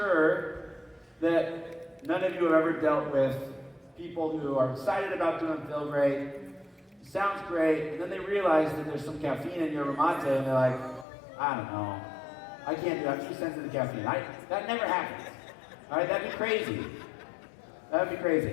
that none of you have ever dealt with people who are excited about doing feel great, sounds great, and then they realize that there's some caffeine in your mate, and they're like, I don't know, I can't do that, I'm too sensitive to caffeine. That never happens. All right, that'd be crazy. That'd be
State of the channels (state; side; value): drops out; right; at 11.1 s